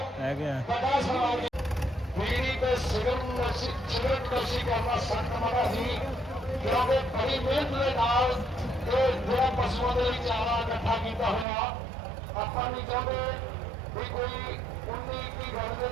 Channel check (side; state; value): left; drops out; at 11.5 s